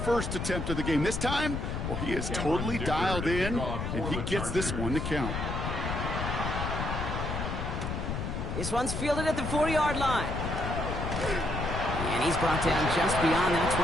attempt of the game. This time, well, he is totally dialed in, and he gets this one to count. This one's fielded at the 40-yard line. And he's brought down just beyond that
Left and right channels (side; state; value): left; noise; rumble, 3 dB below the sound